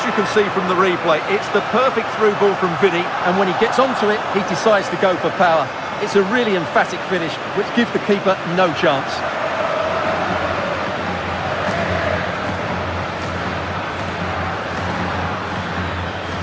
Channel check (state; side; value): identical; both; correlation 1.00